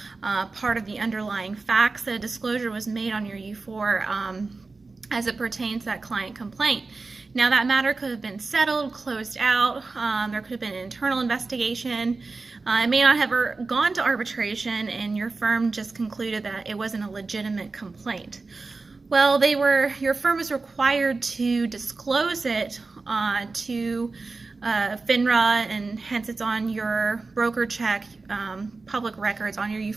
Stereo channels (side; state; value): left; quieter; 3.8 dB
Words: part of the underlying facts, that a disclosure was made on your U4 as it pertains to that client complaint. Now that matter could have been settled, closed out, there could have been an internal investigation. It may not have ever gone to arbitration, and your firm just concluded that it wasn't a legitimate complaint. Well, your firm is required to disclose it to FINRA, and hence it's on your broker check, public records on your